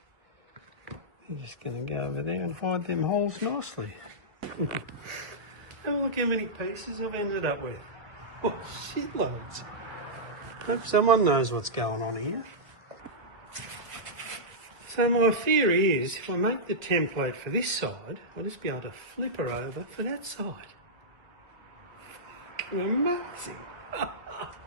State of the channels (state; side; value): late; left; 1.9 ms